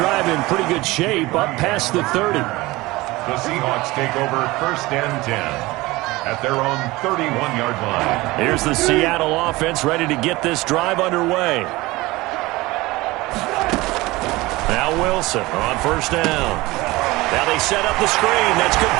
in pretty good shape, up past the 30. The Seahawks take over 1st and 10. At their own 31-yard line. Here's the Seattle offense ready to get this drive underway. Now Wilson on 1st down. Now they set up the screen. That's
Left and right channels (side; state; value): left; quieter; 20.5 dB